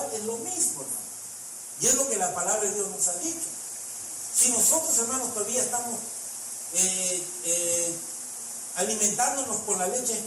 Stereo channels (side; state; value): both; identical; correlation 1.00